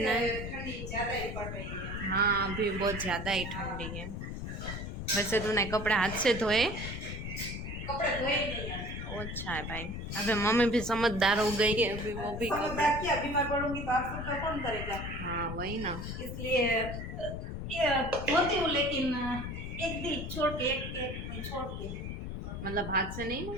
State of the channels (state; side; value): noise; left; rumble, 6 dB below the sound